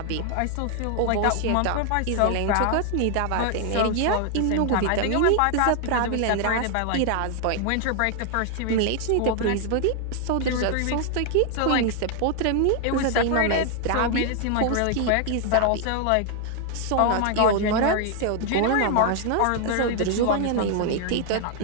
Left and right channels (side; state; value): both; different; correlation 0.00